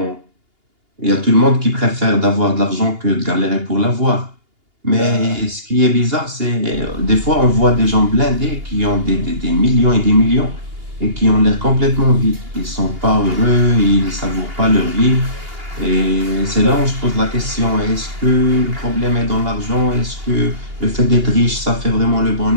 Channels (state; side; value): late; left; 2.8 ms